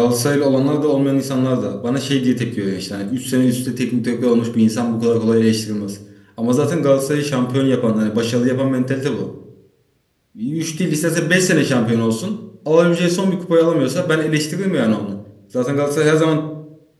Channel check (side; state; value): both; identical; correlation 1.00